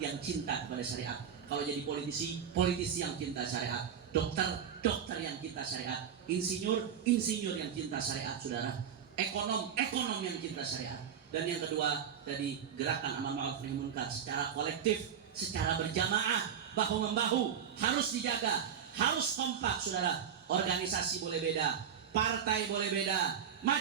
cinta kepada syariat. Kalau jadi politisi, politisi yang cinta syariat. Dokter, dokter yang cinta syariat. Insinyur, insinyur yang cinta syariat, saudara. Ekonom, ekonom yang cinta syariat. Dan yang kedua, tadi gerakan amal ma'ruf nahi munkar secara kolektif, secara berjamaah, bahu-membahu, harus dijaga, harus kompak, saudara. Organisasi boleh beda, partai boleh beda,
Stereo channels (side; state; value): left; quieter; 8.1 dB